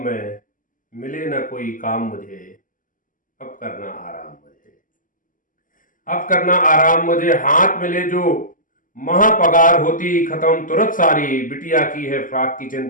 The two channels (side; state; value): right; late; 0.38 ms